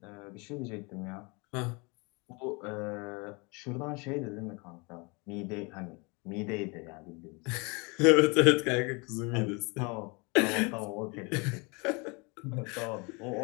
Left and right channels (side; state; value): right; quieter; 29.5 dB